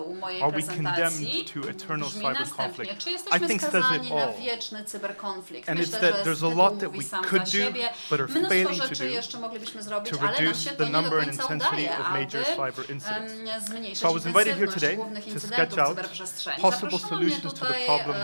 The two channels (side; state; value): both; inverted; correlation -1.00